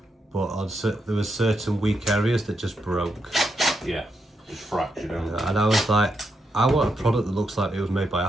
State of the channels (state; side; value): normal; both; correlation 0.82